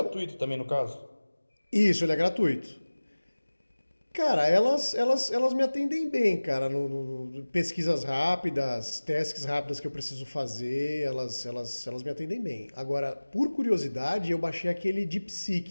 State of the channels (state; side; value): inverted; both; correlation -1.00